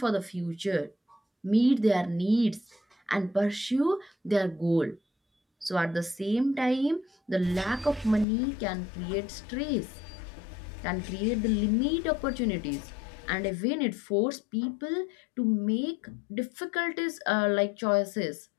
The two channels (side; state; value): right; drops out; at 8.2 s